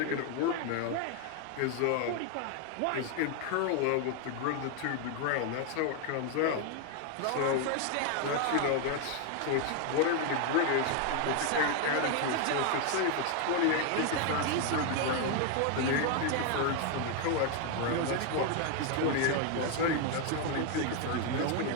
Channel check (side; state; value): both; different; correlation 0.01